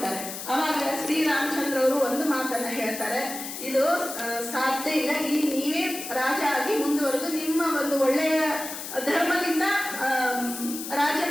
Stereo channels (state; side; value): noise; left; hiss, 8 dB below the sound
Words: ಅವಾಗ ಶ್ರೀರಾಮಚಂದ್ರ ಅವರು ಒಂದು ಮಾತನ್ನ ಹೇಳ್ತಾರೆ, ಇದು ಸಾಧ್ಯ ಇಲ್ಲ, ಇಲ್ಲಿ ನೀವೇ ರಾಜ ಆಗಿ ಮುಂದುವರೆದು ನಿಮ್ಮ ಒಂದು ಒಳ್ಳೆಯ ಧರ್ಮದಿಂದ